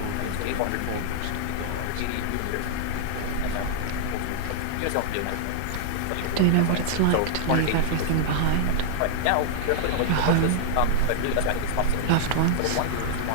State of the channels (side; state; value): both; different; correlation -0.02